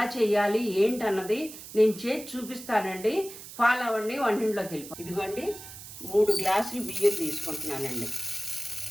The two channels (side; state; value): right; noise; hiss, 14 dB below the sound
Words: చేయాలి ఏంటన్నది నేను చేసి చూపిస్తానండి. ఫాలో అవ్వండి, వంటింట్లోకి వెళ్ళిపో. ఇదిగోండి 3 గ్లాసులు బియ్యం తీసుకుంటున్నానండి.